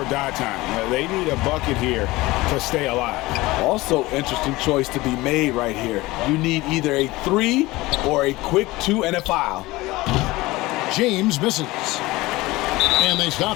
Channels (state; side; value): quieter; right; 19.9 dB